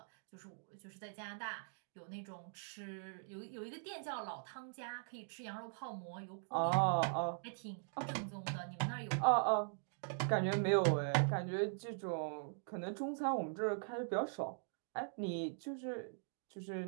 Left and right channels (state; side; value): silent; left; digital silence